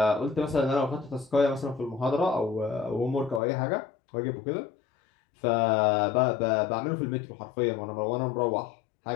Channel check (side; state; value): right; drops out; at 3.4 s